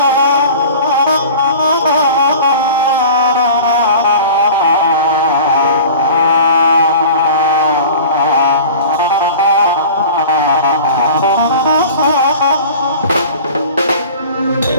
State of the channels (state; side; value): inverted; both; correlation -0.40